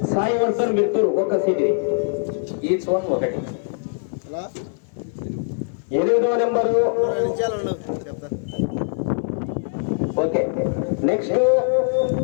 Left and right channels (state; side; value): silent; right; 59 dB below the other